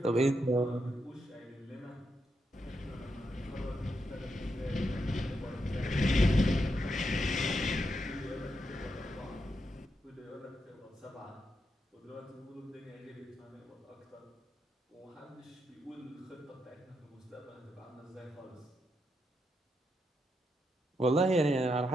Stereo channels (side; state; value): both; normal; correlation 0.83